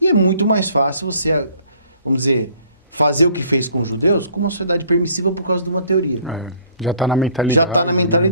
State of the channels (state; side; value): inverted; both; correlation -0.57